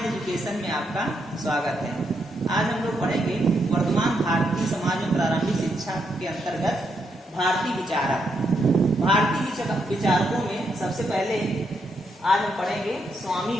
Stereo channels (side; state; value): both; normal; correlation 0.79